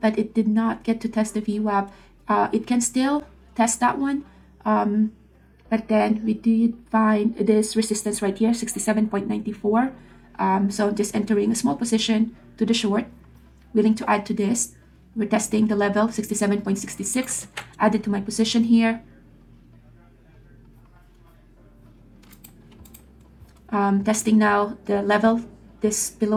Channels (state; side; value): identical; both; correlation 1.00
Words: it did not get to test the VWAP. It can still test that one, but then we did find this resistance right here, 67.94. So just entering a small position to the short, willing to add to this. We're testing the level, 67.66, added to my position here. Testing now the level this